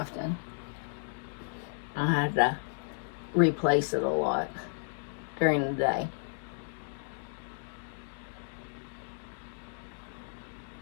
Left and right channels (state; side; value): silent; right; digital silence